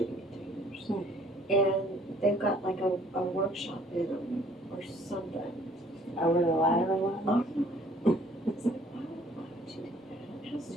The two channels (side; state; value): both; normal; correlation 0.58